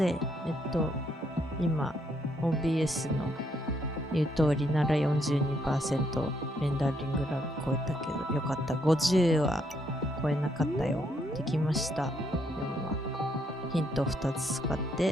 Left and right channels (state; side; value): normal; both; correlation 0.73